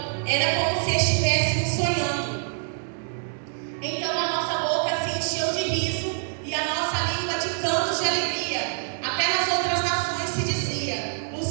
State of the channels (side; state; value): left; silent; 61 dB below the other